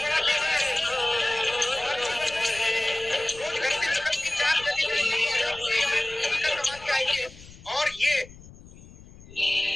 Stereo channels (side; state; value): left; noise; rumble, 20 dB below the sound